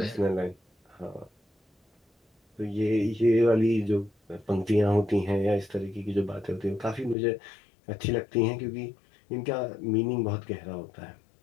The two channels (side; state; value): right; drops out; at 7.2 s